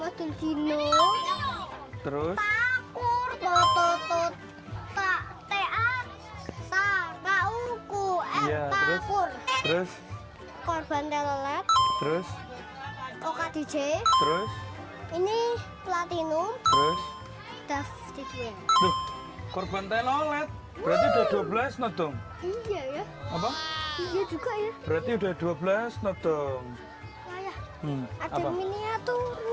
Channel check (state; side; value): identical; both; correlation 1.00